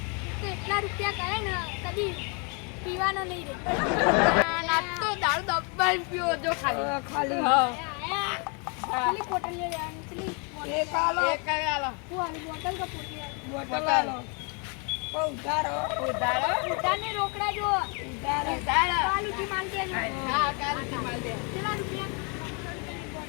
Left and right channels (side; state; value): right; quieter; 35.0 dB